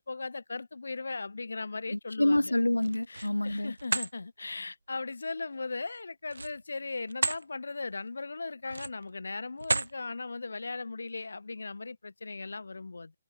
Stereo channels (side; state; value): both; inverted; correlation -0.97